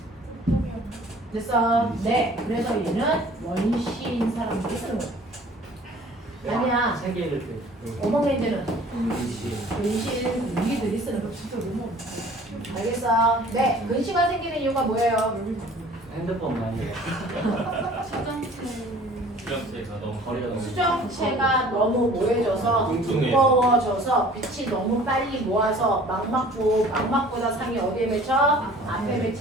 됐어? 네. 그래서 얘는 원시인 사람들이 쓰는 거예요. 아니야. 세계를 오목 렌즈는 근신 우리들이 쓰는 거 진짜 너무 알겠어? 네. 근시가 생기는 이유가 뭐예요? 핸드폰 많이 수정체가 너무 거리가 수정체가 너무 모여져서 두꺼워져서 빛이 너무 빨리 모아서 망막보다 상이 어디에 맺혀? 앞에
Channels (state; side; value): normal; both; correlation 0.49